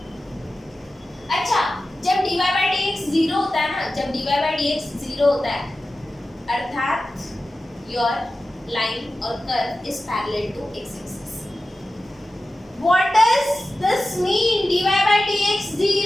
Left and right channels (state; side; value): normal; both; correlation 0.94